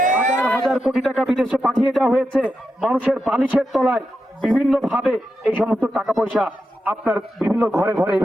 হাজার কোটি টাকা বিদেশে পাঠিয়ে দেওয়া হয়েছে। মানুষের বালিশের তলায় বিভিন্ন ভাবে এই সমস্ত টাকা পয়সা আপনার বিভিন্ন ঘরে ঘরে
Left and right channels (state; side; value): normal; both; correlation 0.88